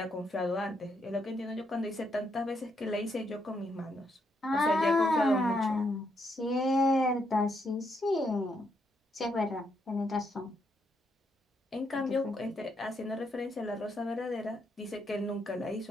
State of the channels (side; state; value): both; normal; correlation 0.77